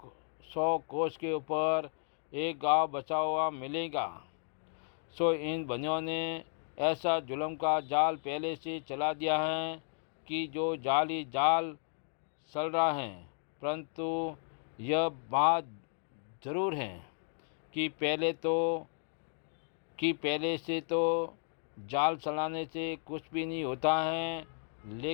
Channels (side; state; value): right; silent; 55 dB below the other